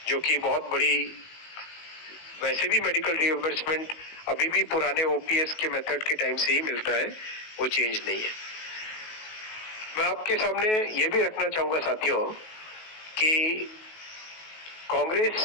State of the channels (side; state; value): right; late; 19 ms